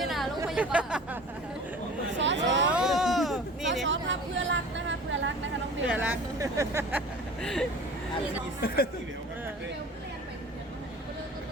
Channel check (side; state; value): both; normal; correlation 0.41